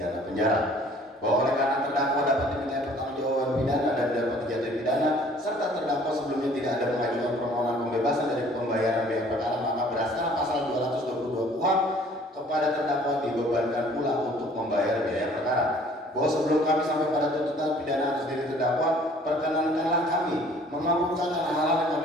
penjara. Bahwa oleh karena terdakwa dapat dimintai pertanggungjawaban pidana dan dapat dijatuhi pidana, serta terdakwa sebelumnya tidak ada mengajukan permohonan pembebasan dari pembayaran biaya perkara, maka berdasarkan pasal 222 KUHP kepada terdakwa dibebankan pula untuk membayar biaya perkara. Bahwa sebelum kami sampai pada tuntutan pidana atas diri terdakwa, perkenankanlah kami memaparkan hal-hal yang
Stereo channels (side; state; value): both; normal; correlation 0.54